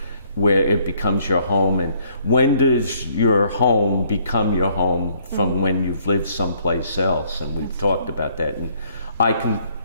where it becomes your home, and when does your home become your home from when you've lived someplace else? And we've talked about that, and I can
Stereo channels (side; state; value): both; inverted; correlation -0.65